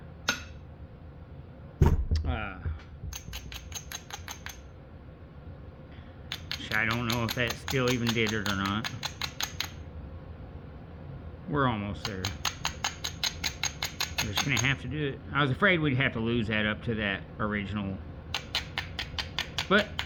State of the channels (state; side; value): identical; both; correlation 1.00